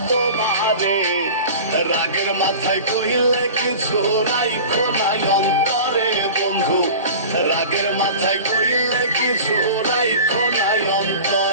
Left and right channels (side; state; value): both; inverted; correlation -0.37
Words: তোমারে। রাগের মাথায় কইলে কিছু রাইখো নাই অন্তরে বন্ধু, রাগের মাথায় কইলে কিছু রাইখো নাই